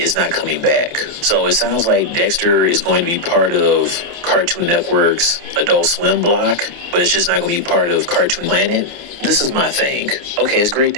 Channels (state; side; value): late; left; 29 ms